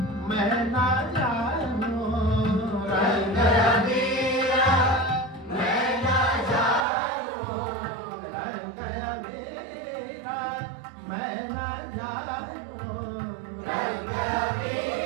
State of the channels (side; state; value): left; drops out; at 6.9 s